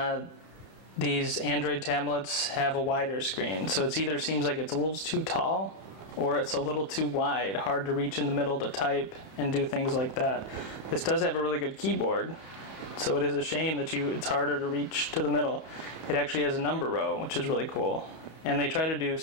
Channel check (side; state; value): right; late; 31 ms